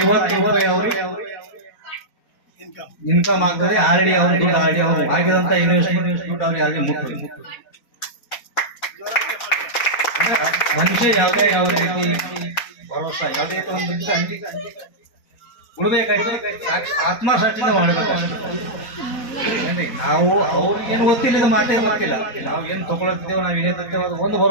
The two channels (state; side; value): late; right; 4.2 ms